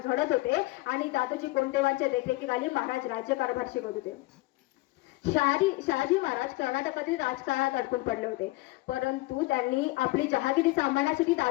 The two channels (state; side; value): quieter; right; 20.9 dB